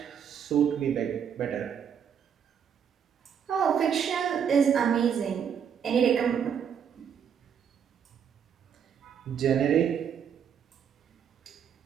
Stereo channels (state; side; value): quieter; left; 7.9 dB